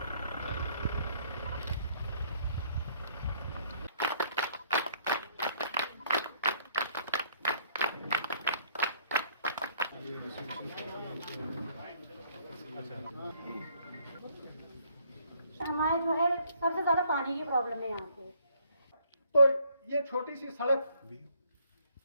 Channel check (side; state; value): both; inverted; correlation -0.65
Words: हमारे जो है सबसे ज्यादा पानी की प्रॉब्लम है यहाँ पे। तो ये छोटी सी सड़क,